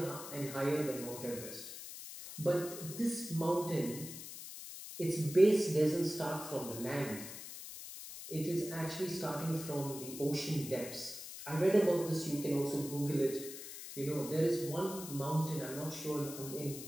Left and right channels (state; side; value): noise; left; hiss, 11 dB below the sound